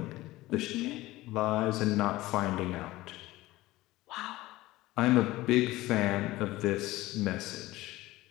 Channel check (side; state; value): right; quieter; 18.2 dB